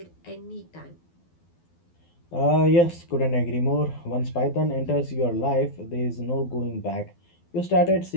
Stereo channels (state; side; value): late; right; 12 ms